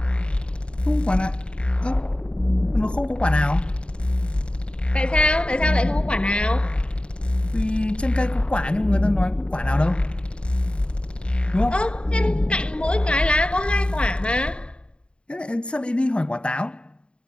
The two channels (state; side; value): late; right; 0.054 ms